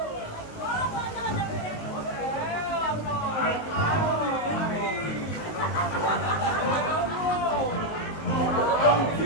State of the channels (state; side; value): late; right; 19 ms